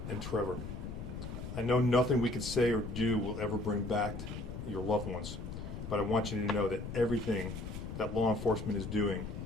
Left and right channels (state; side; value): noise; left; rumble, 7 dB below the sound